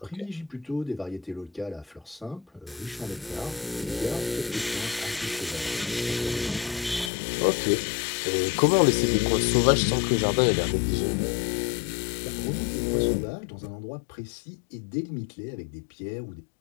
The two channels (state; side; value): drops out; right; at 7.1 s